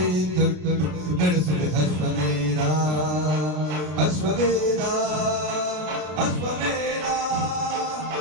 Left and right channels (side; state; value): left; late; 33 ms